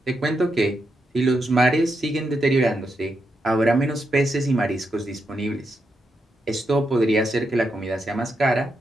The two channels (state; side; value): normal; both; correlation 0.83